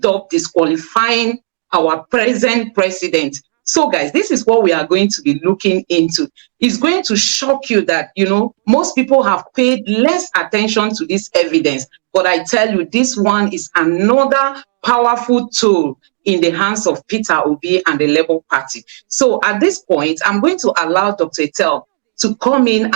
up disqualifying our present president. So, guys, this is what we are going to be looking into. It's going to shock you that, most people have paid less attention to this evidence. But I tell you, this one is another powerful tool in the hands of Peter Obi and the Labour Party. So at this point, I'm going to allow Dr. Etel to come in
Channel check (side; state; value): left; silent; digital silence